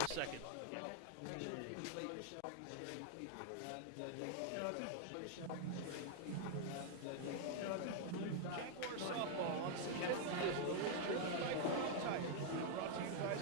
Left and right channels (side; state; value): both; different; correlation 0.00